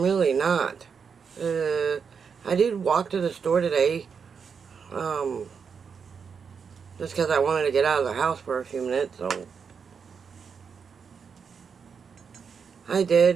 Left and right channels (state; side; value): quieter; left; 6.2 dB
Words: really not. I did walk to the store today, just because I wanted to get out of the house for a few minutes, so I